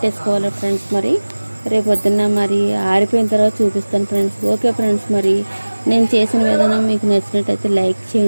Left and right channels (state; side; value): inverted; both; correlation -1.00